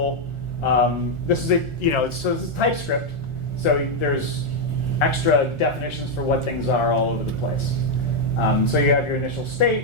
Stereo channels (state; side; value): late; right; 1.4 ms